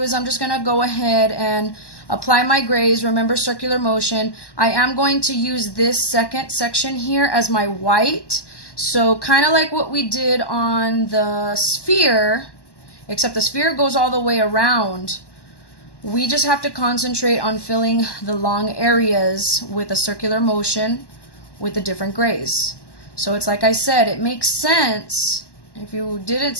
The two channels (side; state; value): right; late; 1.1 ms